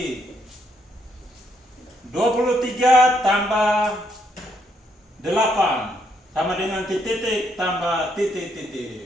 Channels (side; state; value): both; normal; correlation 0.74